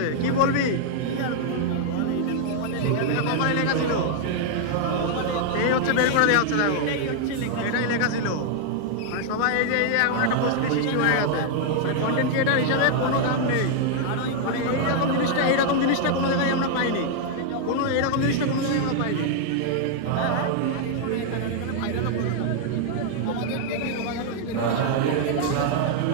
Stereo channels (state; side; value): different; both; correlation 0.00